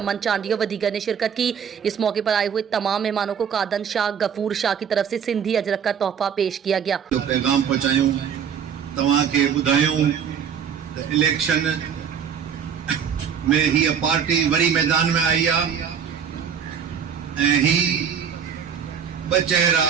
चांडियो व दीगर ने शिरकत की। इस मौके पर आए हुए तमाम मेहमानों को कादन शाह, गफूर शाह की तरफ से सिंधी अजरक का तोहफा पेश किया गया। पैगाम पहुंचायूं तव्हां खे ॿुधायूं त इलेक्शन में ही पार्टी वरी मैदान में आई आहे ऐं ही ॿ चेहरा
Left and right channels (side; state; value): left; quieter; 7.7 dB